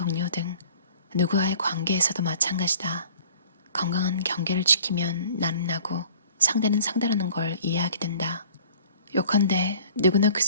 등 누구와의 관계에서도 마찬가지다. 건강한 경계를 지키면 나는 나고 상대는 상대라는 걸 이해하게 된다. 요컨대 누구나 그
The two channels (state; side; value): inverted; both; correlation -0.50